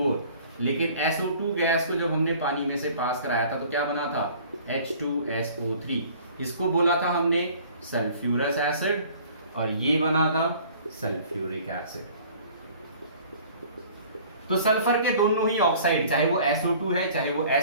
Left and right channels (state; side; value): inverted; both; correlation -0.50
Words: लेकिन SO2 गैस को जब हमने पानी में से पास कराया था तो क्या बना था, H2SO3। इसको बोला था हमने सल्फ्यूरस एसिड और ये बना था सल्फ्यूरिक एसिड। तो सल्फर के दोनों ही ऑक्साइड, चाहे वो SO2 है चाहे वो